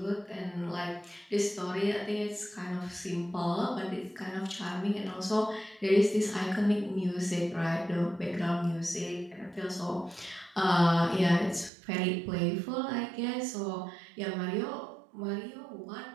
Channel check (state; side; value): drops out; left; at 11.7 s